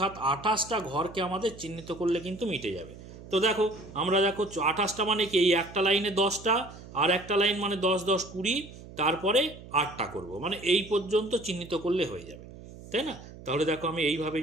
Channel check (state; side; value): noise; right; hum, 17 dB below the sound